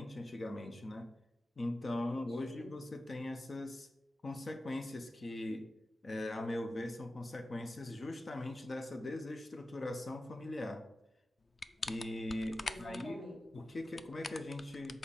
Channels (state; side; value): normal; both; correlation 0.94